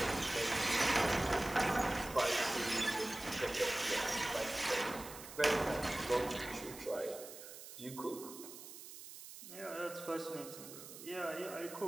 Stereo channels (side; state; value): right; noise; hiss, 13 dB below the sound